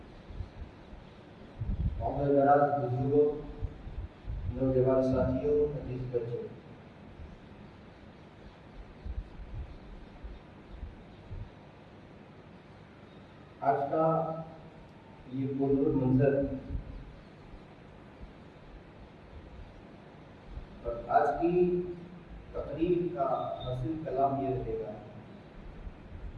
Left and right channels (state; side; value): identical; both; correlation 1.00